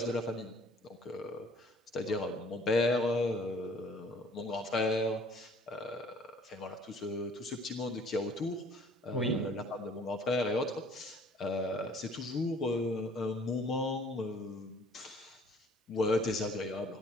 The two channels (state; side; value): normal; both; correlation 0.56